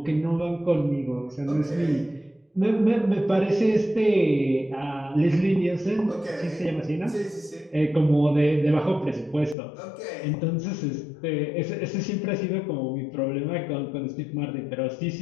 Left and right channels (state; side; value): drops out; right; at 9.6 s